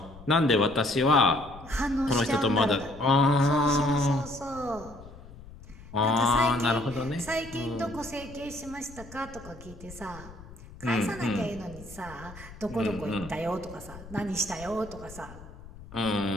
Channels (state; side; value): noise; left; rumble, 17 dB below the sound